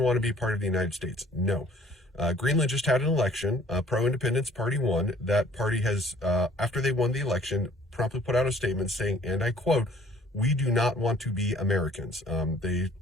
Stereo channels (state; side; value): normal; both; correlation 0.56